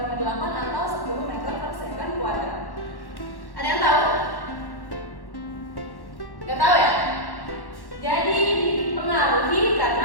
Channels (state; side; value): late; right; 1.1 ms